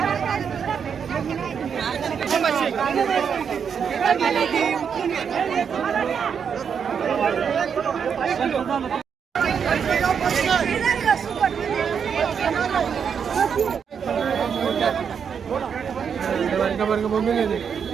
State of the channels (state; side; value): quieter; left; 7.0 dB